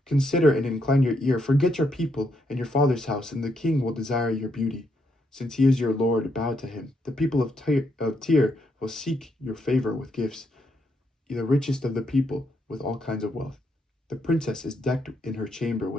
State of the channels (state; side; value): normal; both; correlation 0.77